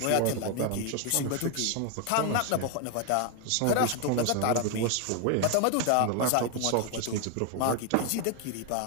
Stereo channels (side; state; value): both; different; correlation 0.01